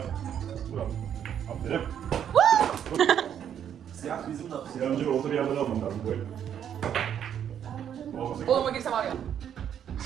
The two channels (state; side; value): quieter; left; 9.2 dB